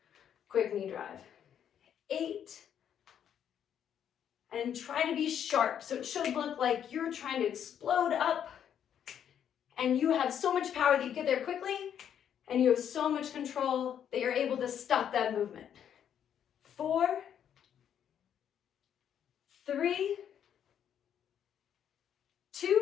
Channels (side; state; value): right; quieter; 9.1 dB